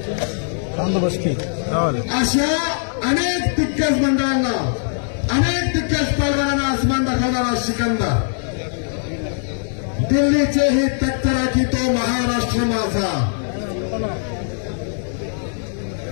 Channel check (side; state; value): right; silent; digital silence